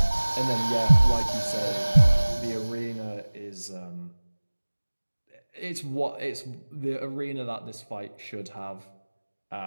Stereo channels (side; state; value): both; inverted; correlation -1.00